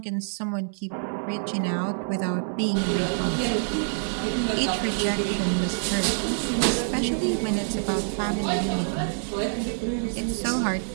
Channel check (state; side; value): silent; left; 61 dB below the other